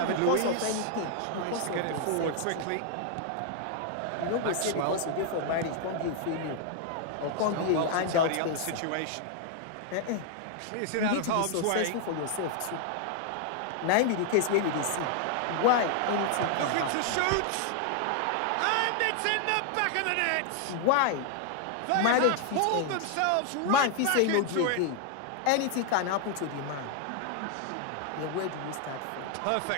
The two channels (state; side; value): different; both; correlation 0.00